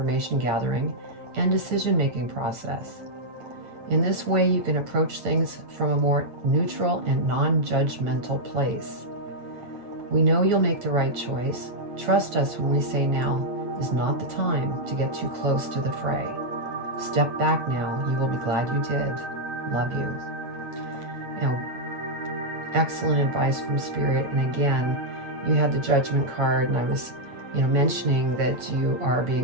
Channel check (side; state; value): left; late; 8.9 ms